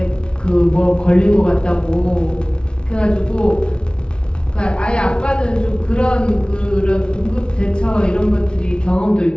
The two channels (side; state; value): right; late; 0.056 ms